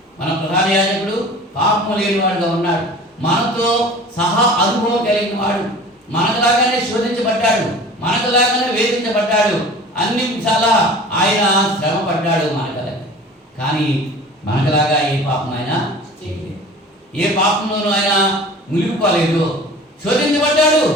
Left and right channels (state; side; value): normal; both; correlation 0.42